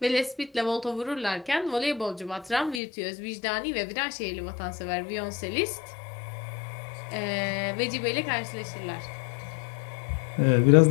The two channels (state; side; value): drops out; right; at 2.8 s